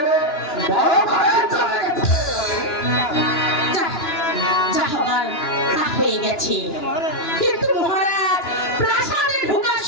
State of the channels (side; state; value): right; late; 2.9 ms